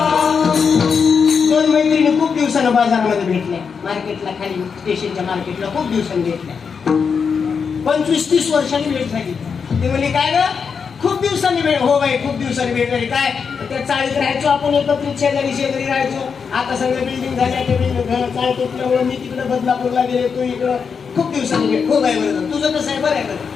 दोन मैत्रिणी खूप दिवसानं बाजारामध्ये भेटल्या, मार्केटला, खाली स्टेशनच्या मार्केटला खूप दिवसांनी भेटल्या. 25-30 वर्षांनी भेट झाली. ते म्हणले काय ग, खूप दिवसांनी भेट. हो बाई, खूप दिवसांनी भेट झाली. काय त्या चाळीत राहायचो आपण, एकत्रित शेजारी शेजारी राहायचो. आता सगळ्या बिल्डिंग झाल्या, ते बिल्डिंग चाळ तुटल्यामुळे मी तिकडे बदलापूरला गेले, तू इकडं. खूप दिवसांनी भेट. हो बाई, बरं तुझं कसं आहे, बरं आहे का?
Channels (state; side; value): quieter; right; 6.0 dB